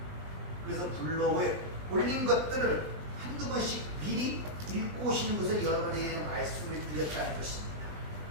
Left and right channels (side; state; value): left; late; 20 ms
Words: 블로그에 올린 것들을 한두 번씩 미리 읽고 오시는 것을 여러분에게 말씀을 드렸다는 것입니다.